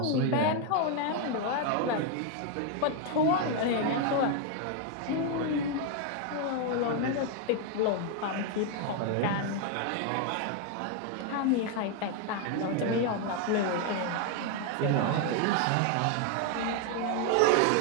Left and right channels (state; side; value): different; both; correlation 0.01